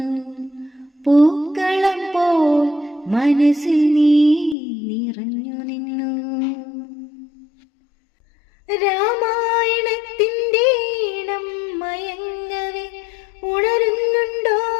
പൂക്കളം പോൽ മനസ്സിൽ നീ നിറഞ്ഞു നിന്നു. രാമായണത്തിൻ്റെ ഈണം മയങ്ങവേ ഉണരുന്നുണ്ടോ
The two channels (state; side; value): drops out; right; at 4.5 s